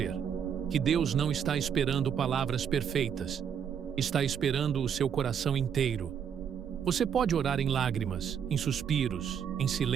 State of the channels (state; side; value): quieter; left; 8.0 dB